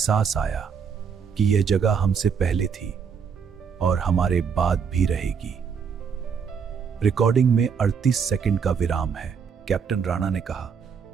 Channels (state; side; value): quieter; left; 6.5 dB